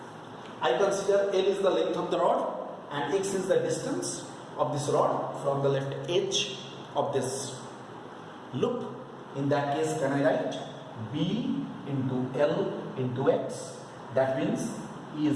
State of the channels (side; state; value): both; identical; correlation 1.00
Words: I consider L is the length of the rod and x is the distance of this rod from the left edge of this loop. In that case, can I write b into L into x? That means E